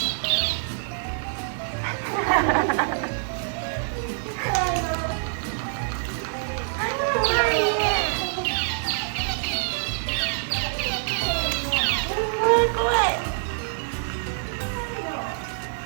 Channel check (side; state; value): left; silent; digital silence